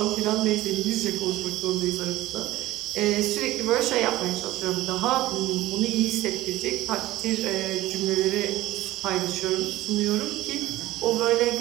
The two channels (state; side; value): quieter; left; 16.8 dB